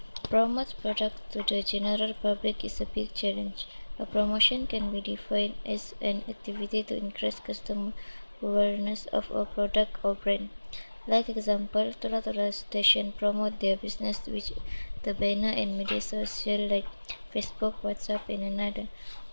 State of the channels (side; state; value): both; inverted; correlation -1.00